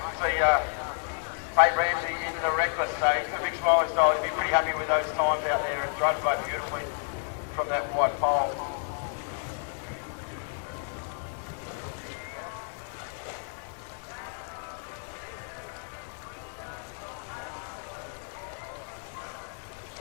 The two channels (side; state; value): right; silent; 58 dB below the other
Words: See Tate Ramsey into the Reckless. So he's got a big smiley style. He's been pretty happy with those times out there and drove the boat beautifully from that white pole.